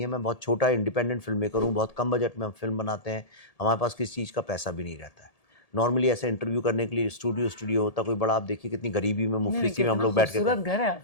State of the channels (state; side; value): late; right; 1.8 ms